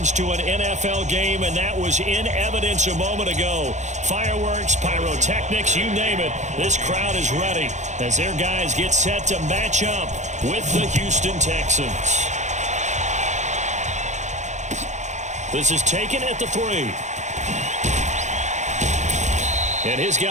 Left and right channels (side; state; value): left; late; 0.34 ms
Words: to an NFL game, and that was in evidence a moment ago. Fireworks, pyrotechnics, you name it. This crowd is ready as their guys get set to match up with the Houston Texans. This is taken at the 3. And his